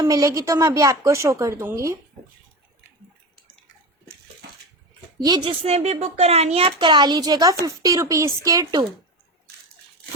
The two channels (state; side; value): normal; both; correlation 0.24